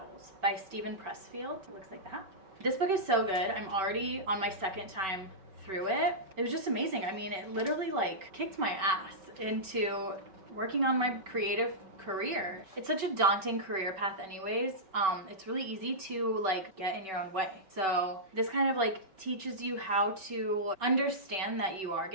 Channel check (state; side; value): late; left; 5.3 ms